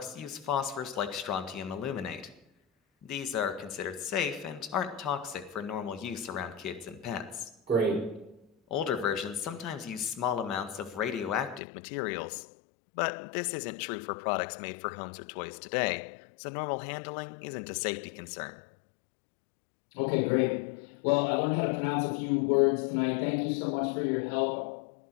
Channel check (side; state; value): right; drops out; at 11.6 s